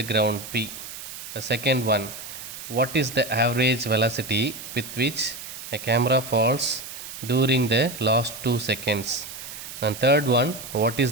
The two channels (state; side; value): noise; right; hiss, 11 dB below the sound